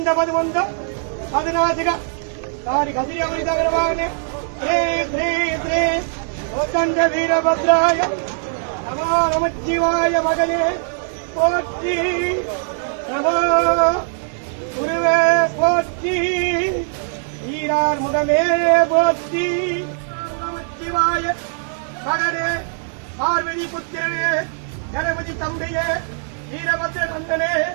పదమంద పదినాసిక దాని కసిరమణి తగలవాగనే శ్రీ శ్రీ శ్రీ కోదండ వీరభద్రాయ నమో నమశివాయ మగనే போற்றி நமோ குருவே போற்றி ஈரார் முதமே போற்றி நமச்சிவாய மகனே பார்வதி புத்திரனே கணபதி தம்பியே வீரபத்ர நந்தனே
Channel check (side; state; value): left; silent; digital silence